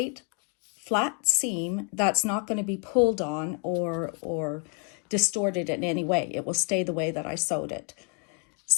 flat seam that's not going to be pulled on or distorted in any way. It will stay the way that I sewed it.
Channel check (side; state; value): right; quieter; 38.1 dB